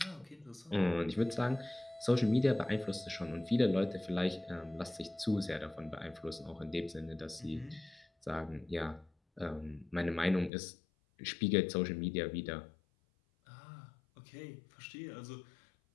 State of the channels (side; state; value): right; drops out; at 10.5 s